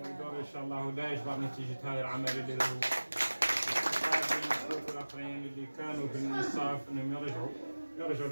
يدور ان شاء الله لا يجبر نتيجه هذا العمل اللي هو الاخرين اللي كانوا في الانصاف انهم يرجعوا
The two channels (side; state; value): both; inverted; correlation -1.00